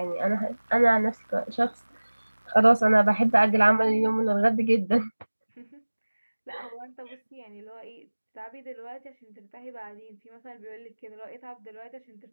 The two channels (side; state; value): both; inverted; correlation -1.00